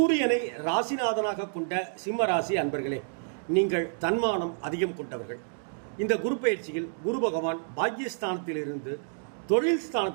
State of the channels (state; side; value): silent; left; digital silence